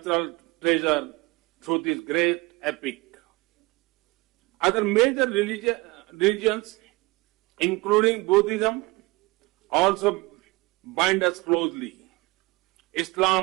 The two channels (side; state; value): left; quieter; 23.6 dB